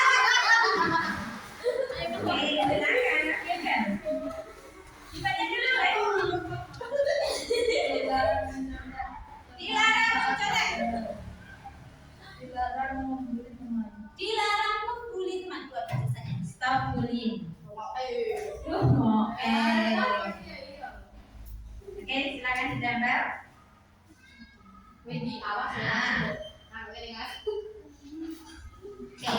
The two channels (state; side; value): identical; both; correlation 1.00